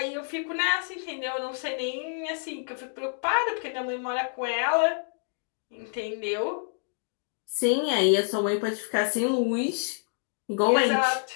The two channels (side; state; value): right; silent; 59 dB below the other